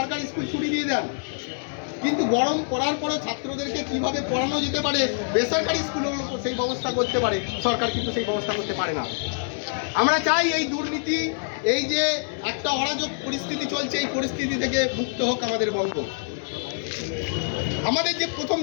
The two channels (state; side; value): silent; right; 58 dB below the other